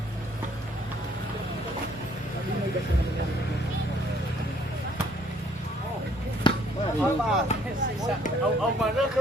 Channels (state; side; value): normal; both; correlation 0.62